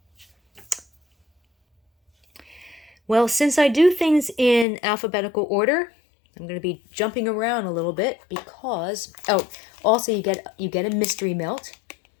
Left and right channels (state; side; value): drops out; right; at 4.7 s